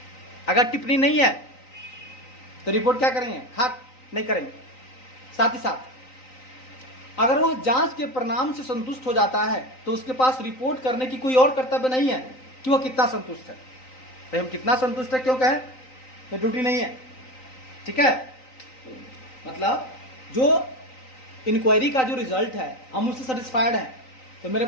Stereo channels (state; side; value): late; right; 3.9 ms